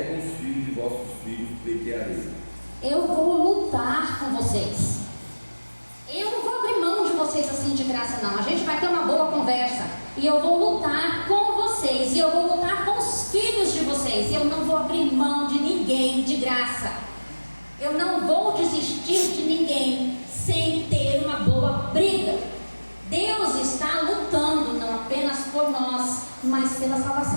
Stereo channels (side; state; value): both; inverted; correlation -1.00